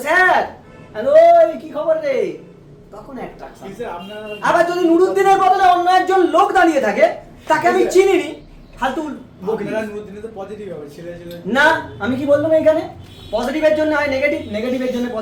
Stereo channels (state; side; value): identical; both; correlation 1.00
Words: স্যার হ্যালো কি খবর রে? তখন অ্যাট্রাকশন। আবার যদি নুরুদ্দিনের বদলে অন্য একজন লোক দাঁড়িয়ে থাকে, তাকে আমি চিনিনি, ফালতু না। আমি কি বললাম? এখানে পজিটিভের জন্য হয় নেগেটিভ, নেগেটিভের জন্য